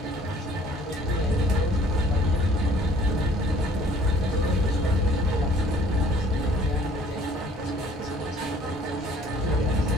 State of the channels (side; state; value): both; normal; correlation 0.56